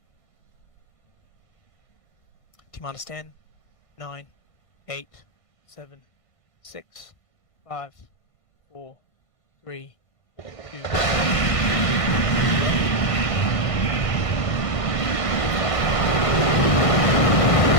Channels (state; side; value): late; right; 1.5 ms